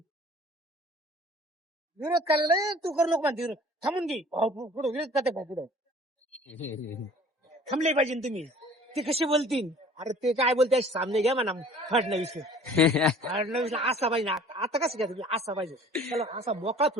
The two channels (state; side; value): normal; both; correlation 0.49